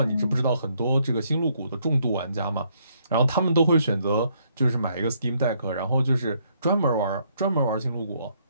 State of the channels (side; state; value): both; inverted; correlation -0.70